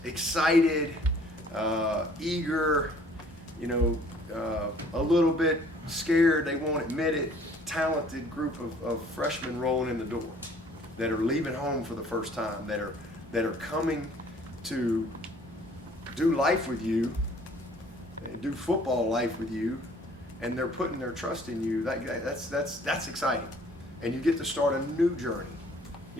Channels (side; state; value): both; normal; correlation 0.56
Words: excited, eager, a little bit scared, they won't admit it, talented group of freshmen rolling in the door that are leaving home for the first time, that are coming to do life with you, do football life with you, and they're putting their trust in you. That's exciting, and you get to start a new journey.